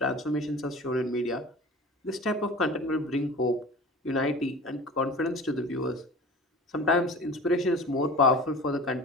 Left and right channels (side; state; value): both; normal; correlation 0.38